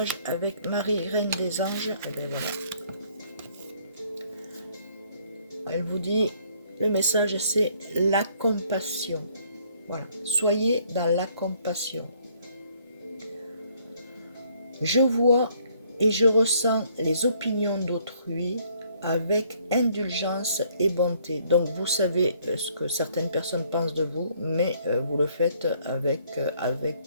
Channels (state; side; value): inverted; both; correlation -0.64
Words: avec Marie, Reine des Anges. Et bien voilà. Elle vous dit, le message c'est la compassion. Voilà, soyez dans la compassion. Je vois et je ressens les opinions d'autrui avec indulgence et bonté. Donc vous savez ce que certaines personnes pensent de vous, mais vous le faites avec